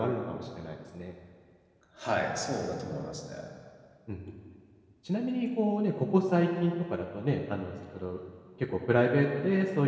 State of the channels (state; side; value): identical; both; correlation 1.00